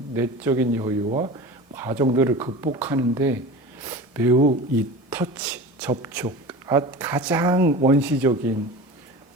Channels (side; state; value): both; normal; correlation 0.34